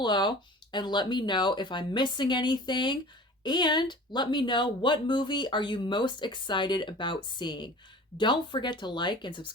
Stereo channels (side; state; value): both; normal; correlation 0.41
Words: and let me know if I'm missing anything. And let me know, what movie are you most excited about seeing? Don't forget to like and